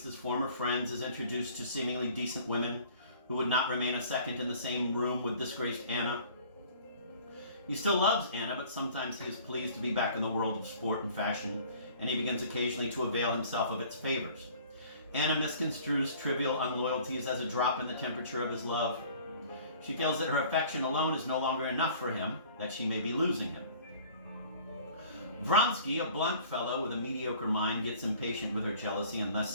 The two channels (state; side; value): inverted; both; correlation -0.50